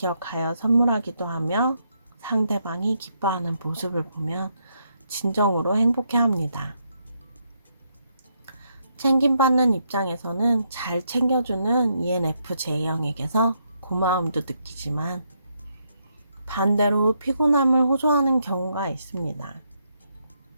선물하기도 하며 상대방이 기뻐하는 모습을 보면 진정으로 행복해합니다. 챙김받는 입장에서는 잘 챙겨주는 ENFJ형에게서 고마움도 느끼지만 반대로 피곤함을 호소하는 경우가 있습니다.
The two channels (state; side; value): inverted; both; correlation -0.77